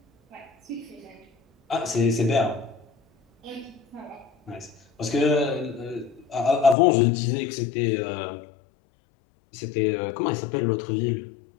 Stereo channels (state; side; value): drops out; right; at 6.8 s